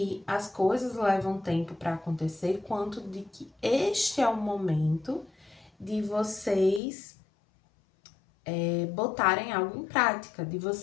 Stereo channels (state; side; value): drops out; right; at 6.8 s